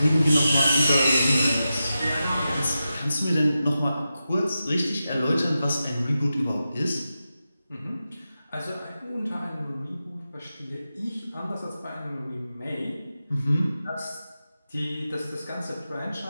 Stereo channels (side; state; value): both; inverted; correlation -0.91